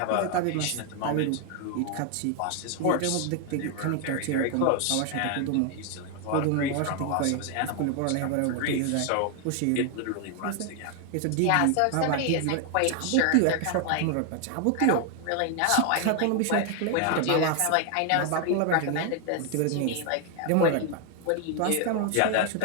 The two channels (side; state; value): both; different; correlation 0.01